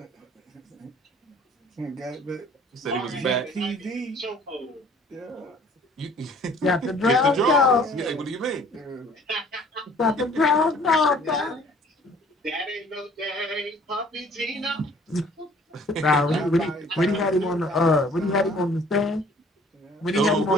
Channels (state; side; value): normal; both; correlation 0.54